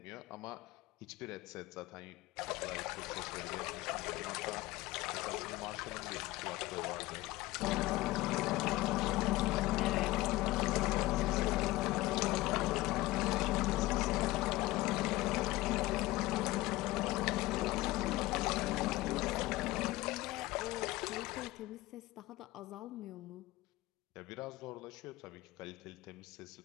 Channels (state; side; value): quieter; right; 18.6 dB